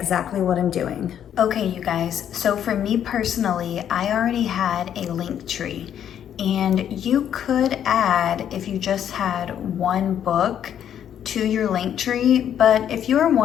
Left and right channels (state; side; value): quieter; right; 9.6 dB